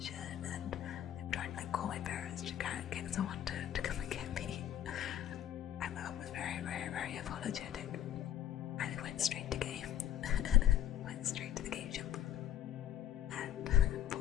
and they were trying to call my parents to get someone to come and get me. And my mum was very, very, very apologetic, and it went straight to game. Went straight to the game shop and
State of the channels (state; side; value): quieter; right; 11.0 dB